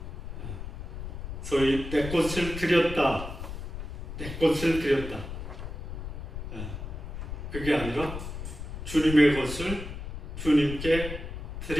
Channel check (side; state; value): left; noise; rumble, 7 dB below the sound